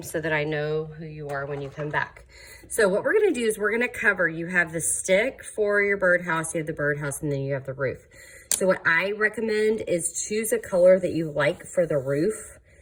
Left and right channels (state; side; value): identical; both; correlation 1.00